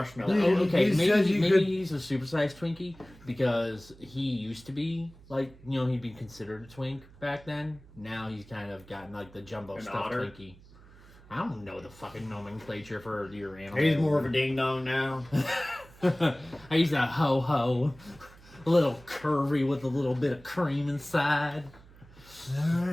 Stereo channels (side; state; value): right; noise; hum, 23 dB below the sound